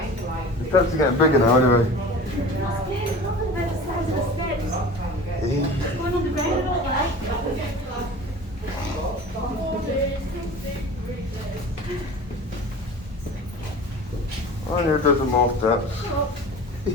The steps are getting bigger now, anyway. I'm scared. Look at the size of the steps. It's going on the ground, all right? I need a dozen more steps.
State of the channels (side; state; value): both; normal; correlation 0.38